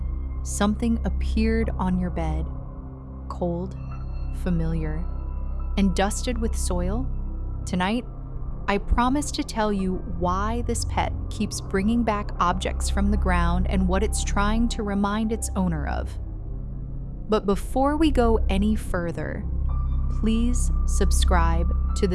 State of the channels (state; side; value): identical; both; correlation 1.00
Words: something appeared on your bed, cold, familiar, and dusted with soil? Tonight, I promise to tell you why this pet keeps bringing back objects from the ground and what it's trying to remind its owner of. But before we go any further, please subscribe to the